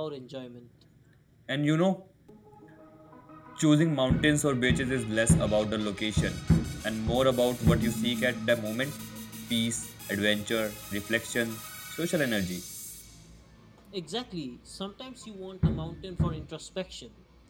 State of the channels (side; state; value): both; identical; correlation 1.00